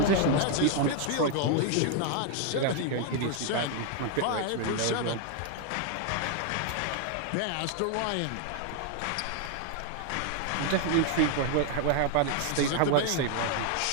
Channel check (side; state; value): both; different; correlation 0.00